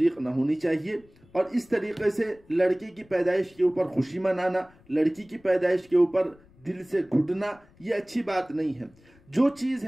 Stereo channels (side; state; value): left; noise; rumble, 29 dB below the sound